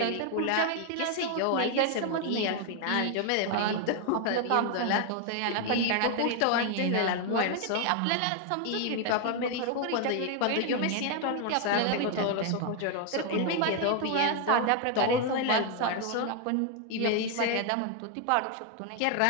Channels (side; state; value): both; different; correlation 0.01